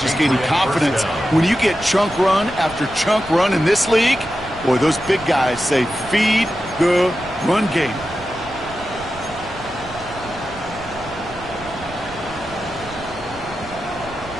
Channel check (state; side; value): noise; right; rumble, 17 dB below the sound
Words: gaining confidence. When you get chunk run after chunk run in this league, boy, those big guys say feed the run game.